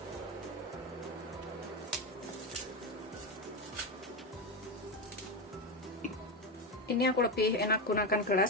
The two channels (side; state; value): both; normal; correlation 0.14